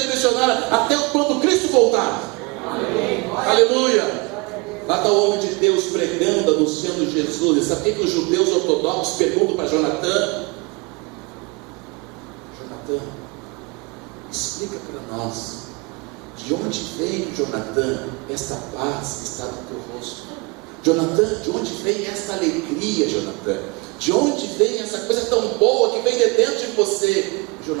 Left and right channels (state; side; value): quieter; left; 28.3 dB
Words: missionária até quando Cristo voltar. Amém. Aleluia. Lá está o homem de Deus pregando, anunciando Jesus. E sabe o que os judeus ortodoxos perguntam para Jonathan? Jonathan, explica para nós, de onde vem, Jonathan, esta paz que está no teu rosto? Jonathan, de onde vem esta alegria, Jonathan? De onde vem essa coisa tão boa que vem de dentro de você?